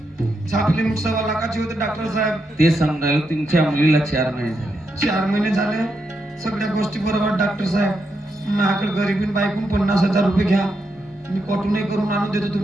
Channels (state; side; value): normal; both; correlation 0.83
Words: छापली मुठ 1.25 लाखाची होते डॉक्टर साहेब. ते समजायला तुमच्या मुलीला 4 महिने झाले. 4 महिने झाले. सगळ्या गोष्टी बरोबर डॉक्टर साहेब. माझ्याकडे गरीबीन बाईकून 50,000 रुपये घ्या. मी कॉटूनही करून आणून देतो